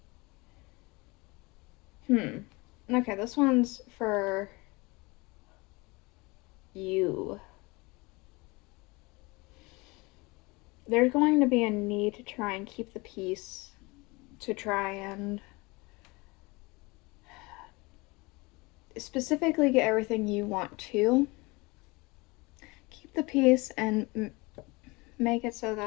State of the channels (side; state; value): right; quieter; 25.0 dB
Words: Okay, this one's for you. There's going to be a need to try and keep the peace, to try and specifically get everything you want to. Keep the peace and make it so